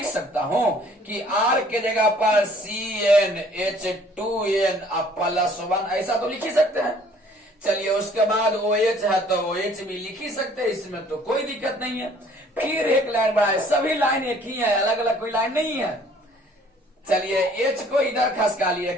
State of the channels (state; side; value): normal; both; correlation 0.57